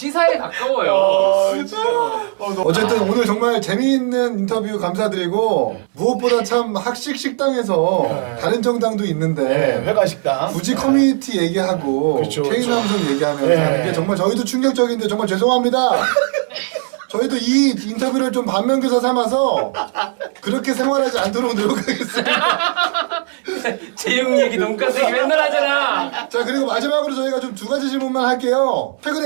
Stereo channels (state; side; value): silent; left; 57 dB below the other